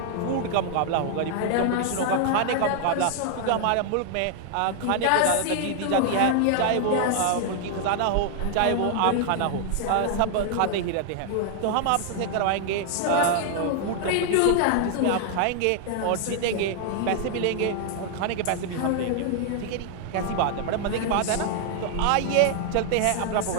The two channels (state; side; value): different; both; correlation 0.00